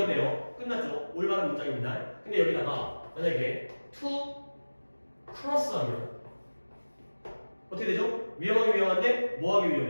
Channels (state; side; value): inverted; both; correlation -1.00